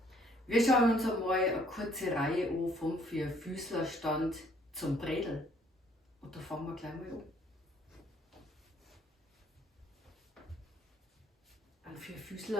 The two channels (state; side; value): normal; both; correlation 0.63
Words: Wir schauen uns einmal eine kurze Reihe an vom Vierfüßlerstand zum Bredel. Und da fangen wir gleich mal an. Ein